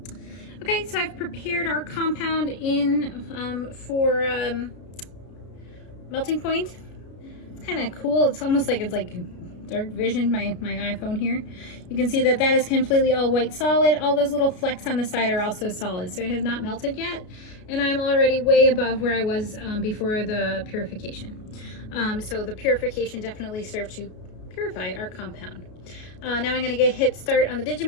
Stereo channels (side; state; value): right; late; 33 ms